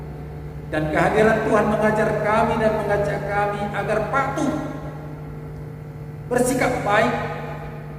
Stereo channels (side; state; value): both; identical; correlation 1.00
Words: dan kehadiran Tuhan mengajar kami dan mengajak kami agar patuh, bersikap baik,